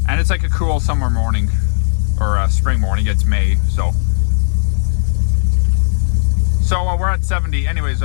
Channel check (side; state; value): right; silent; digital silence